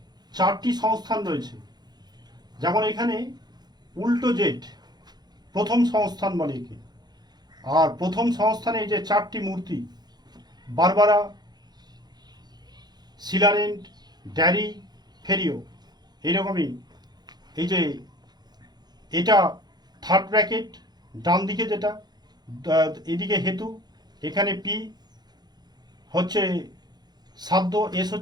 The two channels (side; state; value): left; late; 0.20 ms